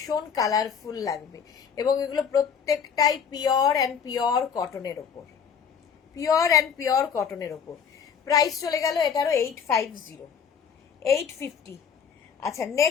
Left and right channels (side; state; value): right; quieter; 7.1 dB